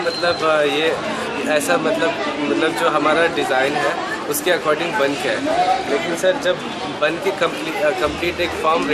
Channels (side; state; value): both; identical; correlation 1.00